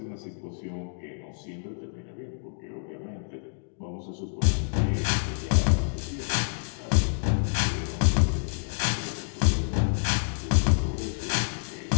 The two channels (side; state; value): right; silent; digital silence